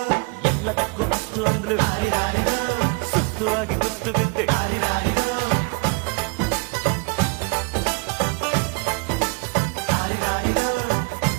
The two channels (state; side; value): quieter; left; 31.2 dB